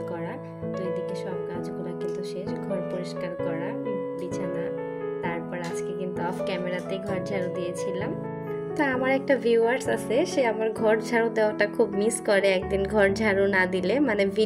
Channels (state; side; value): identical; both; correlation 1.00